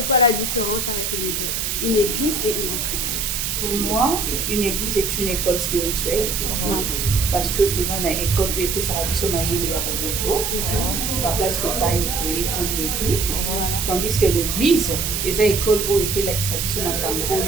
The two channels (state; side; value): noise; right; hiss, 1 dB below the sound